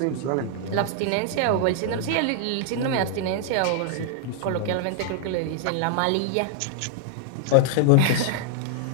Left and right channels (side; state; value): both; different; correlation -0.01